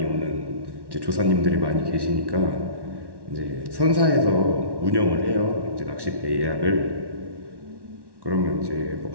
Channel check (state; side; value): late; left; 1.1 ms